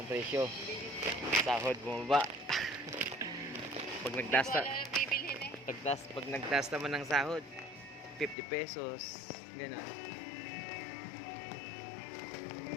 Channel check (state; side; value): drops out; right; at 8.3 s